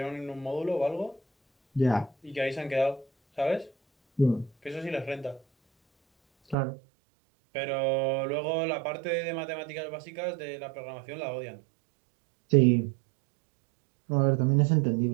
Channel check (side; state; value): left; drops out; at 6.6 s